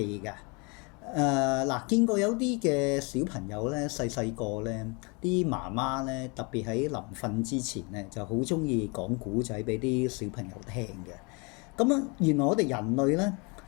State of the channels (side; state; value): right; quieter; 30.8 dB